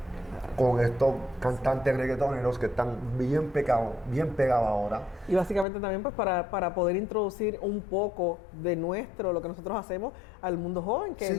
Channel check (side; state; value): right; drops out; at 5.7 s